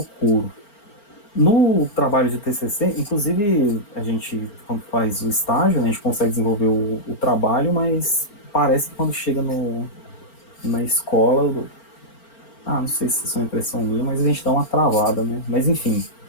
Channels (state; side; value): late; right; 4.4 ms